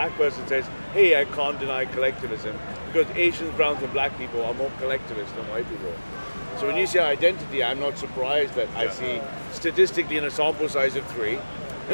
person says, hey, I can't deny collectivism, because Asians, browns and black people are more collectivist than white people. So when you say identity, I'm not surprised that I see statistically in a sample size of 3,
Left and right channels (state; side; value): inverted; both; correlation -1.00